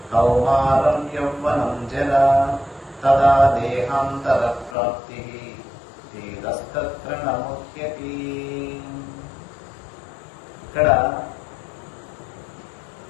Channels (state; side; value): drops out; right; at 4.8 s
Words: कौमारं यौवनं जरा तदा देहान्तरप्राप्तिः धीरस्तत्र न मुह्यति। ఇక్కడ